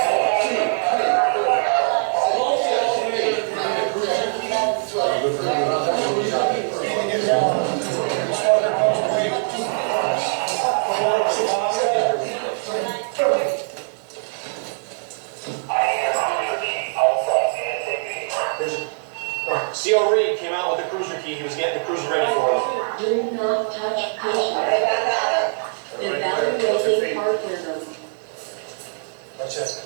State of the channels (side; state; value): left; silent; digital silence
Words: CO Reed came out with the cruiser key. He was getting the cruiser ready for them. Do not touch patient. Evaluating heart rhythm. That's it.